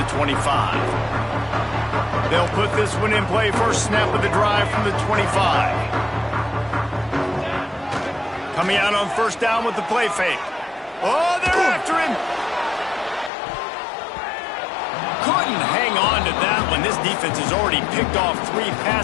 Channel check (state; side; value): drops out; right; at 13.3 s